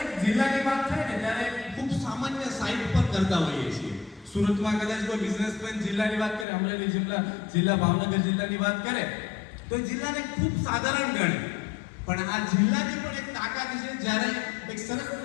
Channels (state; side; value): drops out; right; at 6.5 s